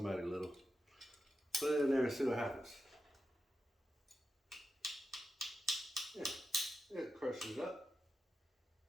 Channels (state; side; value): normal; both; correlation 0.89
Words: little. Put it in there and see what happens. Yeah, it crushes up.